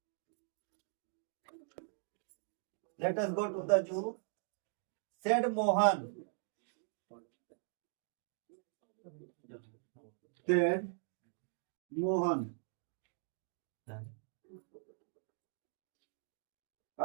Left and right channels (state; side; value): silent; left; digital silence